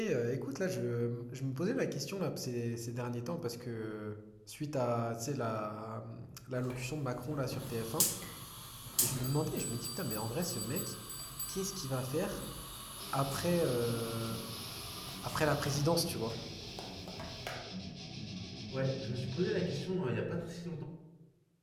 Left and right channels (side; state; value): both; identical; correlation 1.00